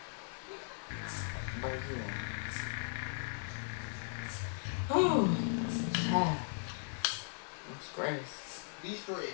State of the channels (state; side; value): silent; right; 53 dB below the other